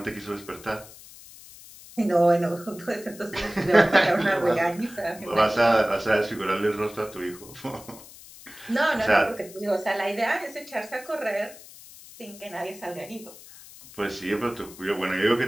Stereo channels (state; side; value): noise; left; hiss, 19 dB below the sound